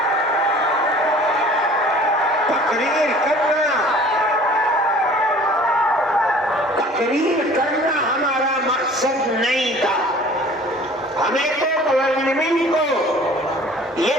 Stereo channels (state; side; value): normal; both; correlation 0.48